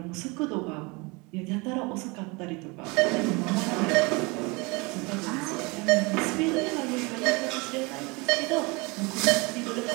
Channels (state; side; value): quieter; left; 26.8 dB